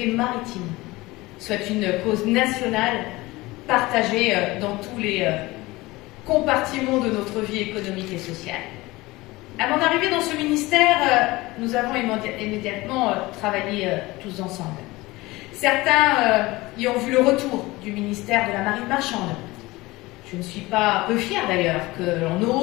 maritime soit une cause nationale partagée dans tous les compartiments de notre vie économique et sociale. À mon arrivée dans ce ministère, nous avons immédiatement travaillé tous ensemble. Certains y ont vu le retour du ministère de la Marine marchande. Je ne suis pas peu fière d'ailleurs que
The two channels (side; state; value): right; quieter; 20.6 dB